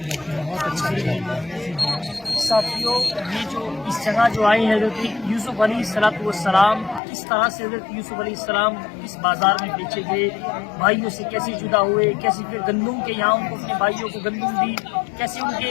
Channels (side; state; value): right; drops out; at 7.0 s